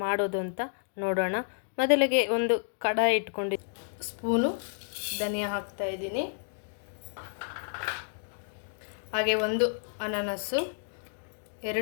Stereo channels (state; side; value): silent; right; digital silence